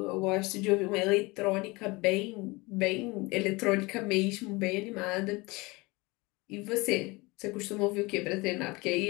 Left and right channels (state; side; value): quieter; right; 24.2 dB